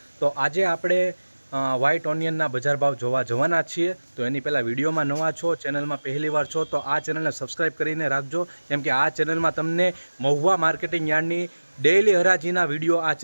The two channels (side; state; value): both; inverted; correlation -1.00